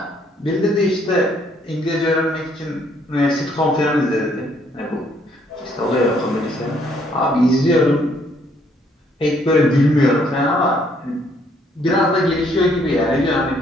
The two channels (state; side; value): normal; both; correlation 0.67